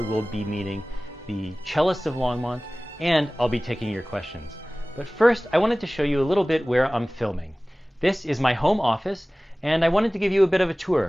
we'll be meeting the cellist of Longmont, and I'll be taking your questions. But first, I wanted to show you a little bit where I'm filming. This is my home office, and I wanted to give you a bit of a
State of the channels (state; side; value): normal; both; correlation 0.98